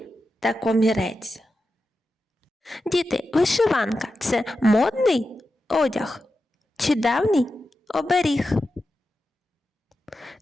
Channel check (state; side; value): normal; both; correlation 0.90